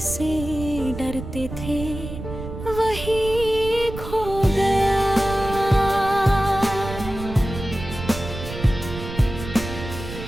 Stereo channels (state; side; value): noise; right; rumble, 9 dB below the sound